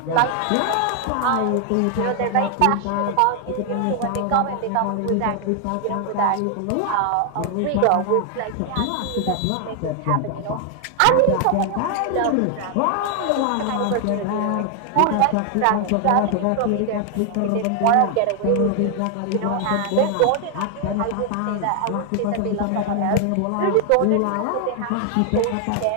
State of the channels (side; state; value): both; different; correlation 0.00